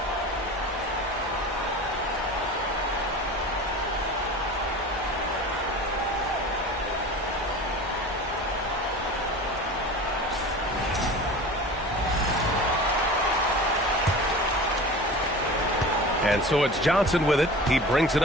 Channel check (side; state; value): both; normal; correlation 0.36